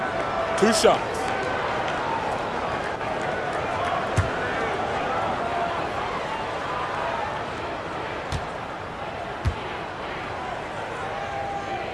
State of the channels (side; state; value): both; identical; correlation 1.00